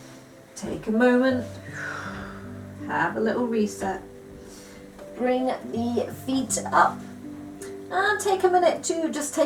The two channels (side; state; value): both; identical; correlation 1.00